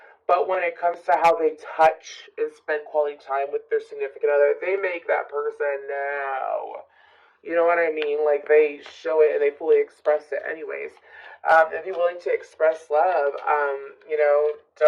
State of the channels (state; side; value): identical; both; correlation 1.00